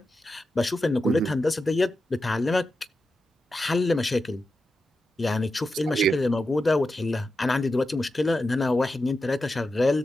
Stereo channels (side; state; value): both; normal; correlation 0.89